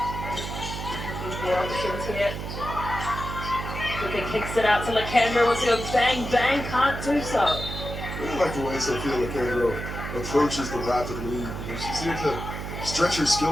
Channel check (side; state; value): right; noise; hum, 6 dB below the sound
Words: Options here. Luka kicks it out to Lakandra, wants to go bang, bang, can't do so. I really like the way Sophia Lakandra approaches the rapid lead. She's here to stretch her